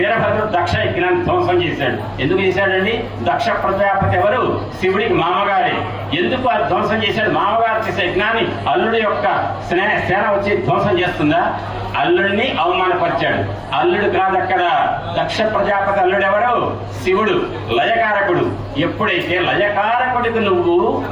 దక్ష యజ్ఞాన్ని ధ్వంసం చేశాడు. ఎందుకు చేశాడండి? దక్ష ప్రజాపతి ఎవరు? శివుడికి మామగారే. ఎందుకు అది ధ్వంసం చేశాడు? మామగారు చేసే యజ్ఞాన్ని అల్లుడి యొక్క సేన వచ్చి ధ్వంసం చేస్తుందా? అల్లుడిని అవమానపరిచాడు. అల్లుడు కాదు అక్కడ, దక్ష ప్రజాపతి అల్లుడు ఎవరు? శివుడు, లయకారకుడు. ఎప్పుడైతే లయకారకుడికి నువ్వు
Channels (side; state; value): both; identical; correlation 1.00